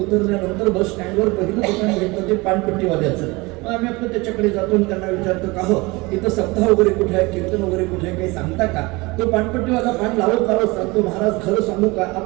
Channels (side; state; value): left; quieter; 23.9 dB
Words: बस स्टँडवर पहिलं दुकान भेटतं ते पानपट्टीवाल्याचं. मग आम्ही आपलं त्याच्याकडे जातो आणि त्यांना विचारतो का हो इथं सप्ताह वगैरे कुठे आहे, कीर्तन वगैरे कुठे आहे, काही सांगता का? तो पानपट्टीवाला पान लावत सांगतो महाराज खरं सांगू का,